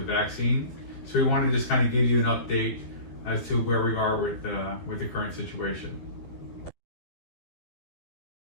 vaccine. So we want to just kind of give you an update as to where we are with the current situation.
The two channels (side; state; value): right; late; 12 ms